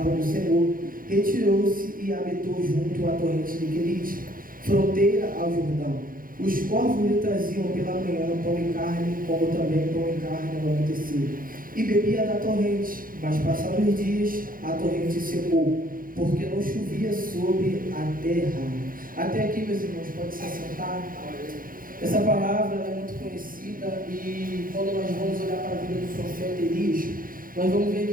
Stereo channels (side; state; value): left; late; 0.41 ms